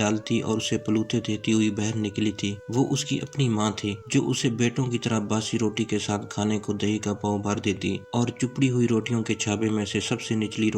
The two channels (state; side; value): identical; both; correlation 1.00